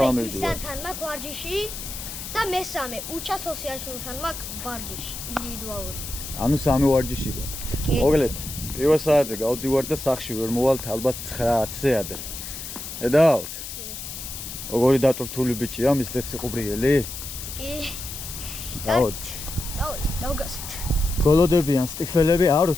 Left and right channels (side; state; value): left; noise; hiss, 9 dB below the sound